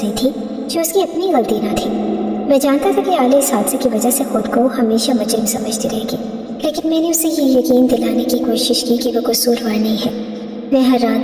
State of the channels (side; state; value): both; identical; correlation 1.00